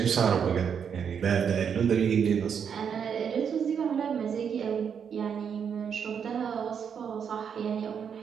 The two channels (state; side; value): quieter; left; 7.3 dB